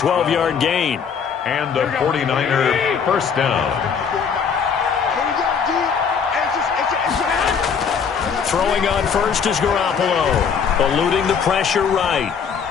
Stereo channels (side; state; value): right; quieter; 6.6 dB